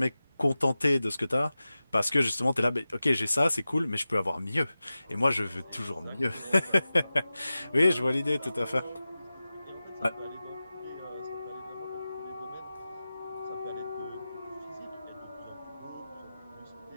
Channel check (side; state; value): both; inverted; correlation -0.95